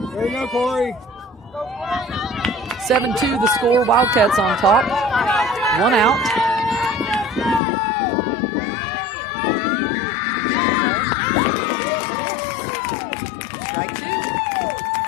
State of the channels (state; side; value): drops out; right; at 7.6 s